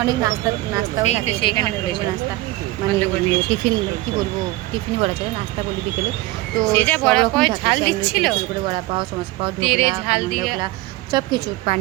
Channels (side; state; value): left; quieter; 18.9 dB